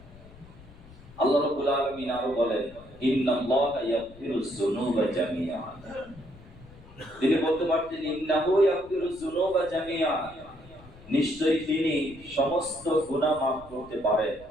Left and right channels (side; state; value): left; noise; rumble, 21 dB below the sound